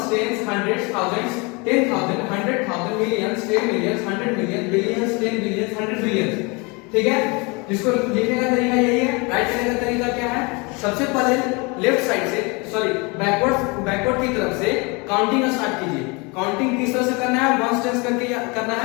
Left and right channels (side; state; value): right; quieter; 28.8 dB